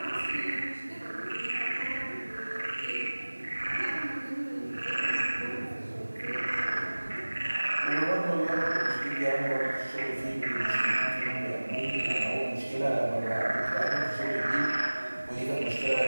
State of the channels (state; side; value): inverted; both; correlation -1.00